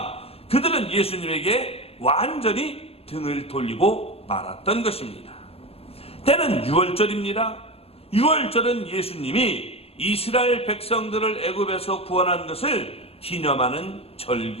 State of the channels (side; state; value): right; late; 0.29 ms